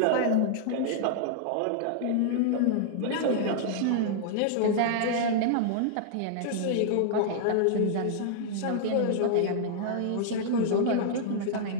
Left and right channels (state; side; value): different; both; correlation -0.01